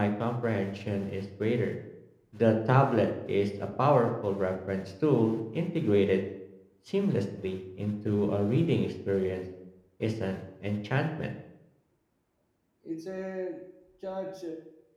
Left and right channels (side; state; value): both; identical; correlation 1.00